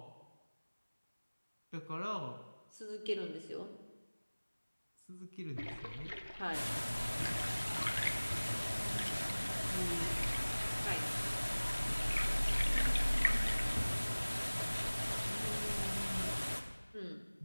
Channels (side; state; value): both; inverted; correlation -1.00